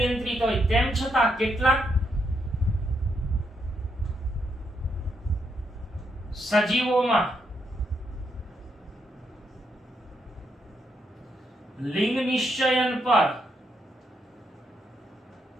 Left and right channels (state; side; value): normal; both; correlation 0.78